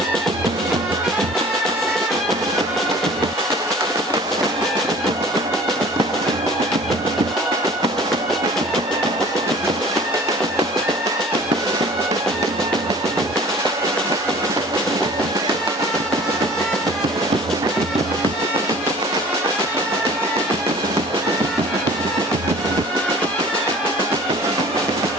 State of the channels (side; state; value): both; normal; correlation 0.47